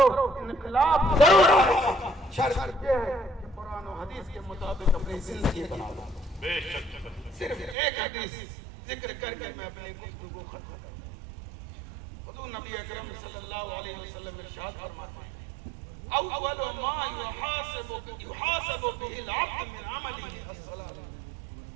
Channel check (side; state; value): left; drops out; at 7.8 s